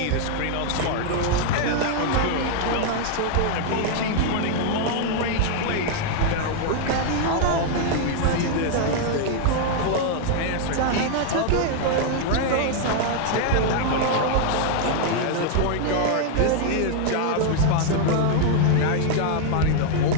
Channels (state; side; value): different; both; correlation 0.00